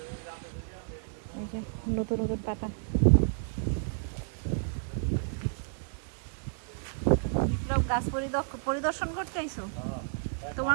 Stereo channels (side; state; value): left; silent; digital silence